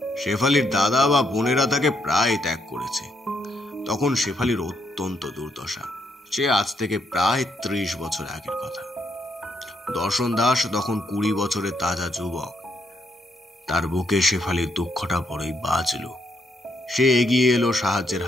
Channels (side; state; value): both; normal; correlation 0.76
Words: শেফালির দাদা বা বোনেরা তাকে প্রায় ত্যাগ করেছে। তখন শেফালির অত্যন্ত দুর্দশা। সে আজ থেকে প্রায় 30 বছর আগের কথা। দর্শন দাস তখন 20 বছরের তাজা যুবক। তার বুকে শেফালির দুঃখটা বড়ই বাজল। সে এগিয়ে এলো সাহায্যের